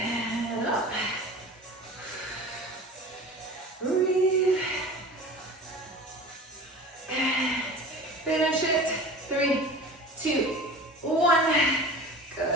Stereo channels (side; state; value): both; normal; correlation 0.38